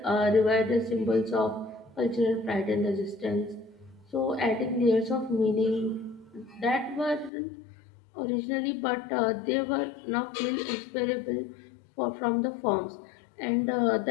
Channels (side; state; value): right; drops out; at 7.3 s